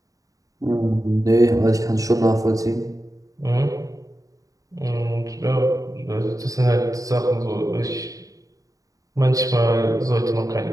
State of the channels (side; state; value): left; late; 0.16 ms